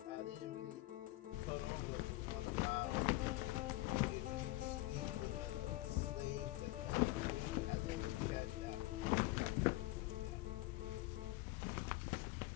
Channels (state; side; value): quieter; right; 19.0 dB